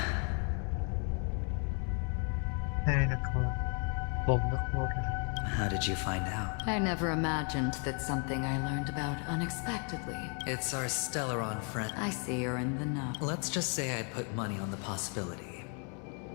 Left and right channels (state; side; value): quieter; right; 39.0 dB